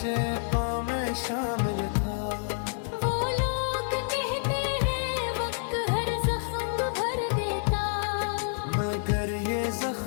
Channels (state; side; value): silent; right; 59 dB below the other